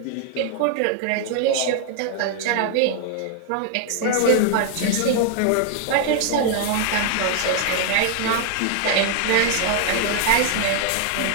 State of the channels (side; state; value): both; different; correlation 0.00